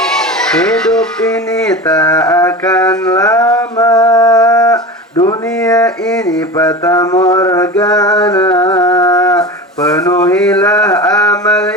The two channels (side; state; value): both; normal; correlation 0.30